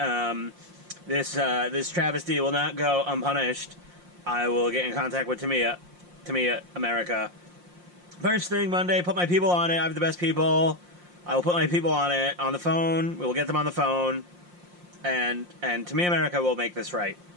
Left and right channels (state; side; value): late; left; 5.7 ms